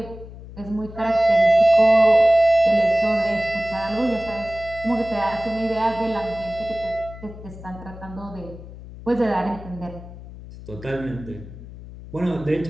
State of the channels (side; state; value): left; noise; hum, 15 dB below the sound